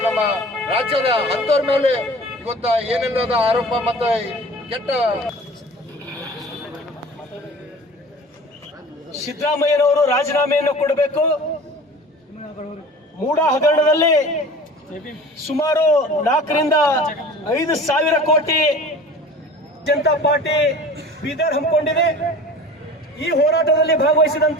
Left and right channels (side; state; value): both; normal; correlation 0.41